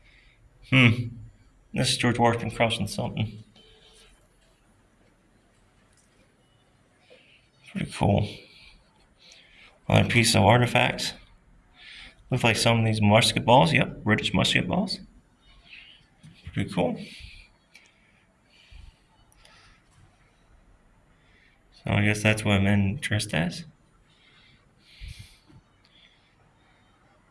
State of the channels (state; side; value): identical; both; correlation 1.00